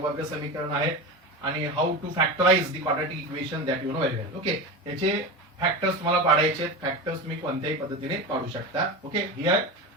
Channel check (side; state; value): both; normal; correlation 0.24